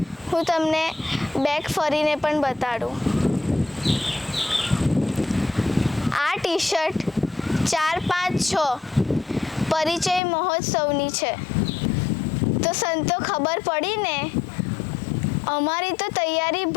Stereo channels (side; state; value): right; drops out; at 10.2 s